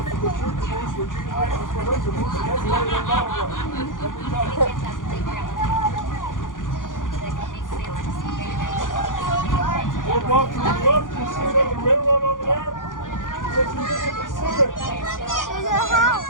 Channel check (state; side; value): late; right; 0.88 ms